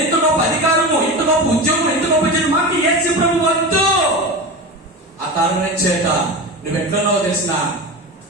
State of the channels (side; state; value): both; normal; correlation 0.26